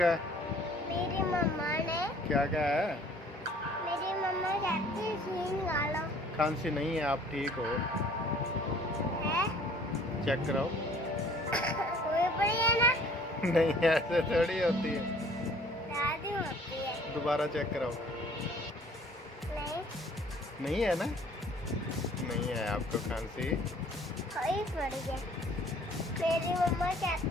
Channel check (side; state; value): both; normal; correlation 0.55